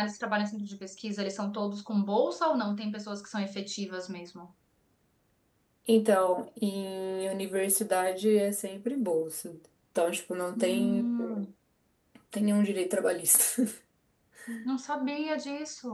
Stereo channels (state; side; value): identical; both; correlation 1.00